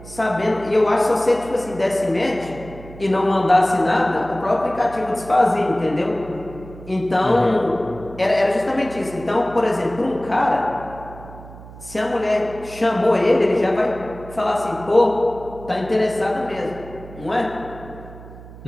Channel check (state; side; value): noise; right; hum, 17 dB below the sound